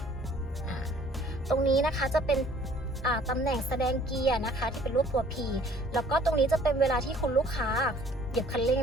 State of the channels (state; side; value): normal; both; correlation 0.56